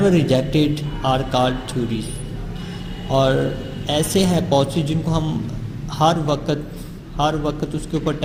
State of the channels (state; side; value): identical; both; correlation 1.00